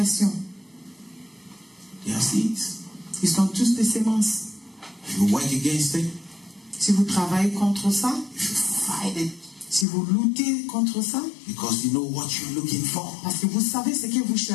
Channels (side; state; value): right; drops out; at 9.9 s